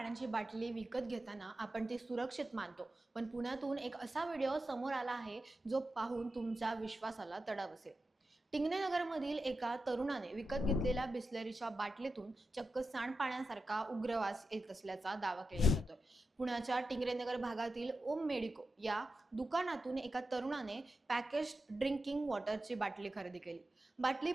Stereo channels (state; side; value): normal; both; correlation 0.91